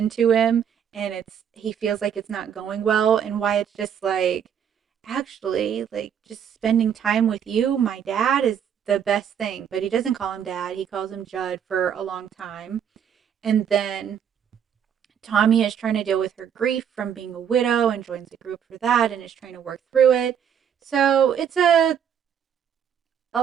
to him, and he feels like it's not going well, and Wyatt's just like, actually, like, just spending time with you, my dad, is the best thing. But he doesn't call him dad, he calls him Judd for a long time. And then Tommy is trying to deal with her grief from being a widow and joins a group for that and is trying to work through it. So it's a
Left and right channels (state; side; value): quieter; left; 8.4 dB